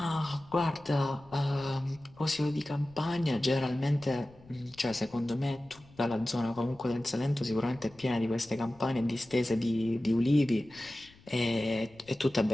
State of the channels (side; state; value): left; noise; rumble, 25 dB below the sound